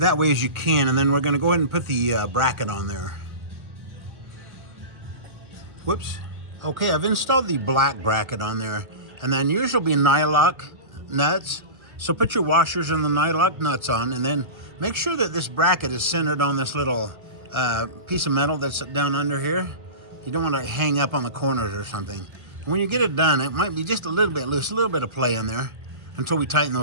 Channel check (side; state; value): left; late; 1.3 ms